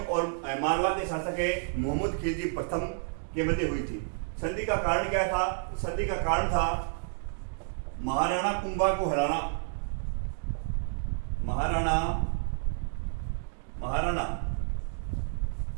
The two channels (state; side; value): silent; left; digital silence